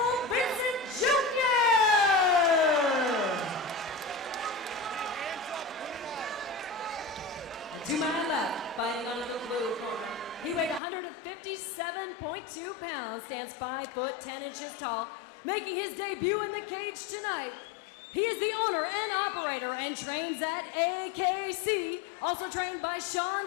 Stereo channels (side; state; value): right; drops out; at 10.8 s